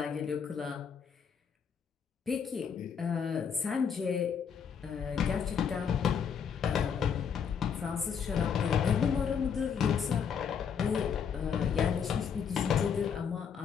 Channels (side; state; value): right; quieter; 7.0 dB